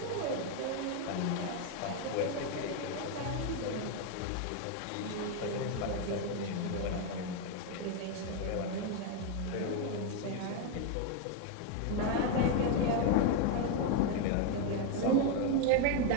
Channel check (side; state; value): both; different; correlation 0.01